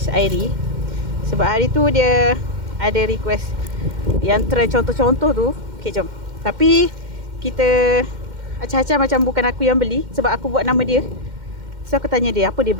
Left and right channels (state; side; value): late; left; 2.1 ms